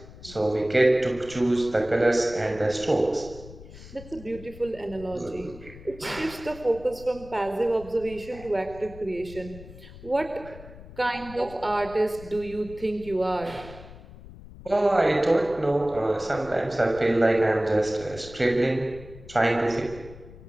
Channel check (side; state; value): left; noise; rumble, 17 dB below the sound